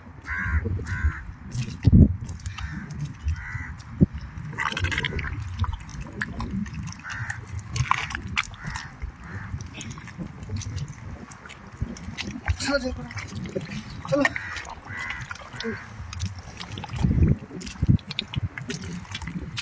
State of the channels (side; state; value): both; identical; correlation 1.00